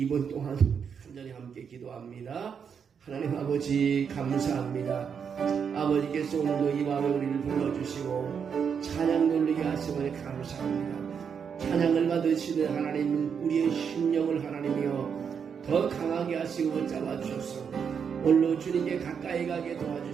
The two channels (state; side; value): quieter; left; 6.9 dB